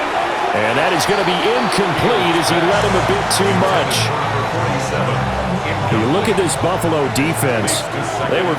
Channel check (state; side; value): identical; both; correlation 1.00